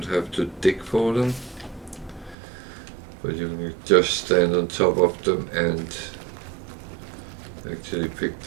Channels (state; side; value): drops out; left; at 2.4 s